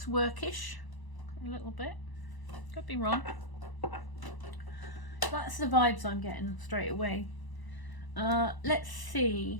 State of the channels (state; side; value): late; right; 1.0 ms